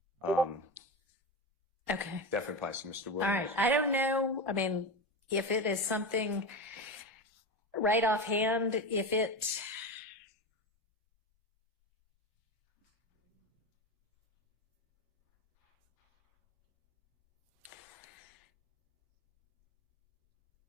Okay. definitely applies to Mr. Williams. All right. I don't know. I mean, if it is something right offhand, if it,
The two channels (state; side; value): normal; both; correlation 0.21